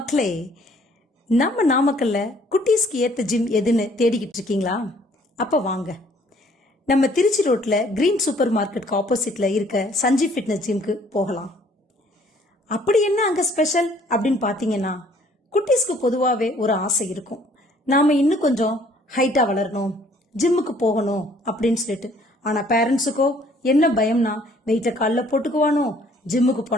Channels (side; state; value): both; normal; correlation 0.60